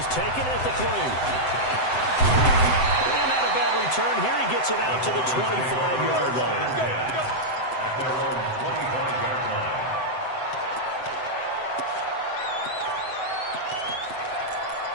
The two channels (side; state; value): right; late; 7.8 ms